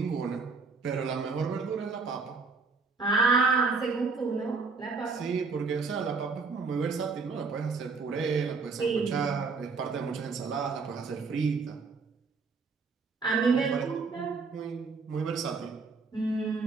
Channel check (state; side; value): quieter; left; 4.6 dB